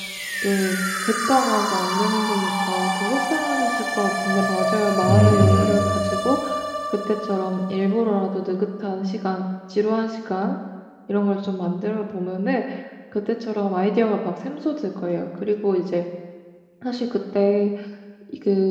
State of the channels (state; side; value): identical; both; correlation 1.00